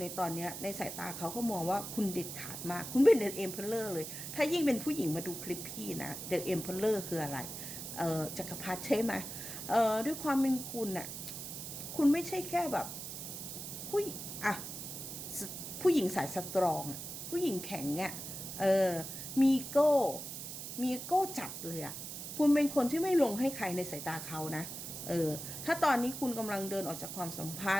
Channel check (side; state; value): right; noise; hiss, 8 dB below the sound